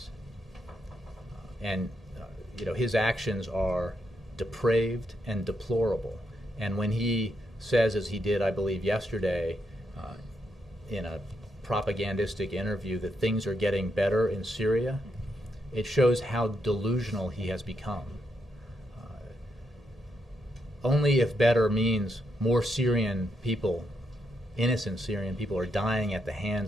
And his actions are depraved and deplorable. And when he says, as he did, I believe, yesterday in a propagandistic interview, that things are getting better in Syria, it shows how delusional he has become. Only if better means more Syrian people, innocent Syrian people, are dying at the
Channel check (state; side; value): normal; both; correlation 0.80